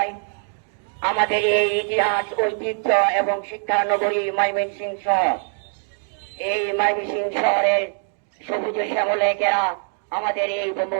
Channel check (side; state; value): left; silent; 56 dB below the other